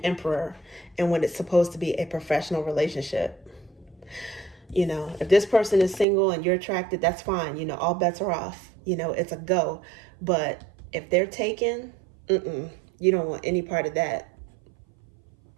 and when it's supposed to be a professional relationship. If this person is single and you're attracted, that's fine. All bets are off. It's a go. But if they're taken, you don't want any part of that.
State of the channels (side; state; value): left; drops out; at 6.1 s